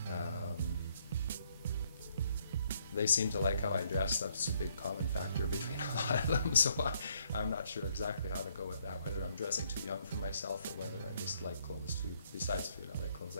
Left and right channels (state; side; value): inverted; both; correlation -0.70